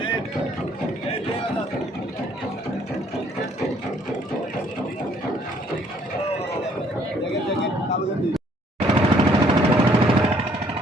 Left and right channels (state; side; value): normal; both; correlation 0.63